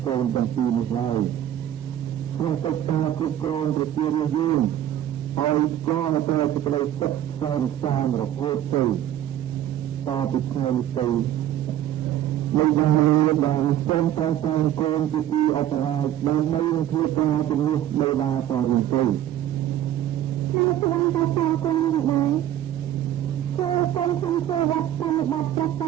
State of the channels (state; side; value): quieter; left; 11.7 dB